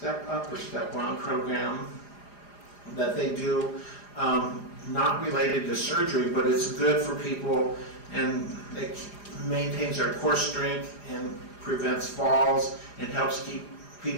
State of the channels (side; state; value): right; late; 4.9 ms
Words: Up or Step On program that they do, not related to surgery, but it's good for people, and it maintains their core strength and prevents falls and helps keep